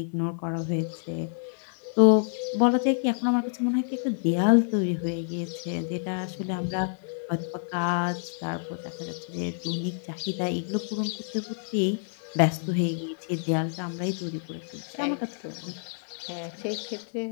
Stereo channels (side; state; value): right; silent; 59 dB below the other